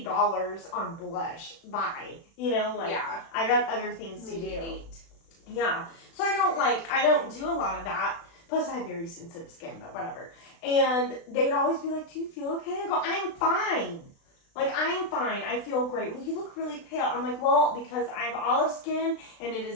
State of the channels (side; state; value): right; late; 36 ms